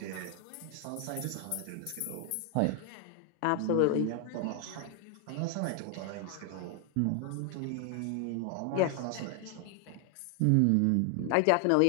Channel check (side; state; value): both; different; correlation 0.00